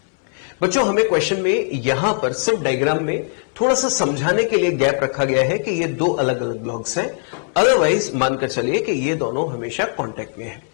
बच्चों हमें क्वेश्चन में यहां पर सिर्फ डायग्राम में थोड़ा सा समझाने के लिए गैप रखा गया है कि ये दो अलग अलग ब्लॉक्स हैं, अदरवाइज मानकर चलिए कि ये दोनों हमेशा कांटेक्ट में है।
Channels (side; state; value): right; silent; 66 dB below the other